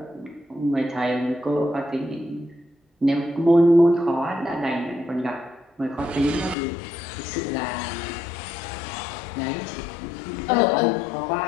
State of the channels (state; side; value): drops out; right; at 6.6 s